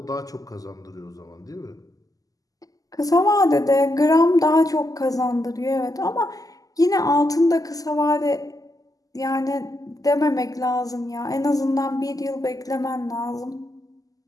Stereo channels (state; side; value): late; right; 0.17 ms